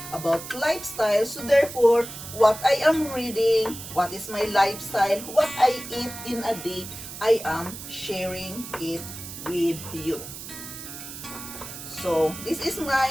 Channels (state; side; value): noise; right; hiss, 11 dB below the sound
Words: about lifestyle. So therefore, what I am reading, what is my lifestyle, what I eat in a day, I am sharing it with you. So this is